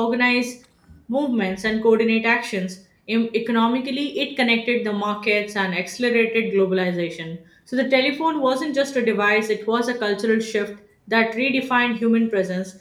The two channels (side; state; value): both; identical; correlation 1.00